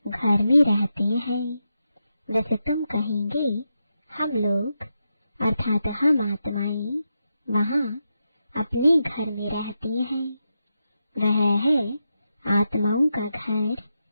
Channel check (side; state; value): both; inverted; correlation -0.87